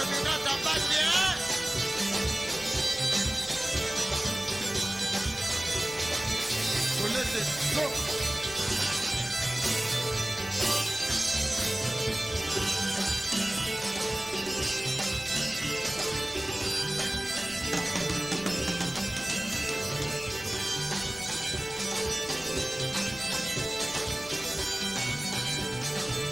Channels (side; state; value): left; noise; hum, 21 dB below the sound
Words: Mbaki, hein? Faut laisser donc.